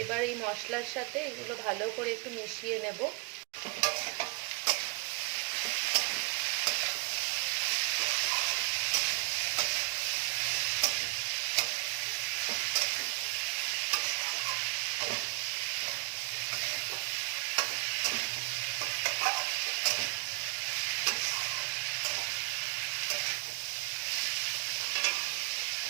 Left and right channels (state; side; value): quieter; left; 28.1 dB